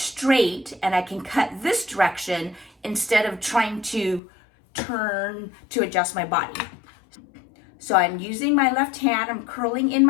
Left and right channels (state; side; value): drops out; right; at 4.2 s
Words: and I can cut this direction instead of trying to turn to adjust my body. So I'm using my left hand, I'm curling in